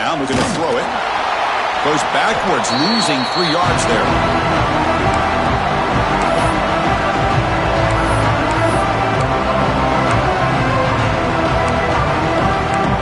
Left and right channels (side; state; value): both; identical; correlation 1.00